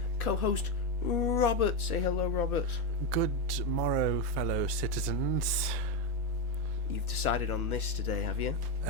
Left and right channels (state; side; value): normal; both; correlation 0.08